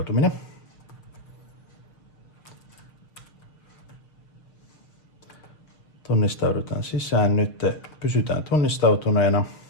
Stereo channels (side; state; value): right; late; 6.9 ms